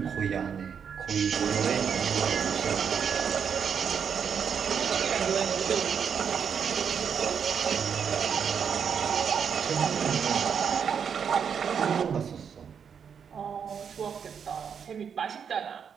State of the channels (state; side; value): quieter; left; 7.2 dB